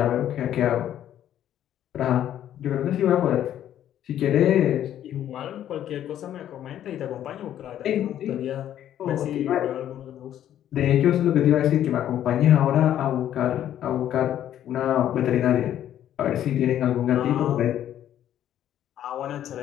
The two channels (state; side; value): quieter; right; 11.2 dB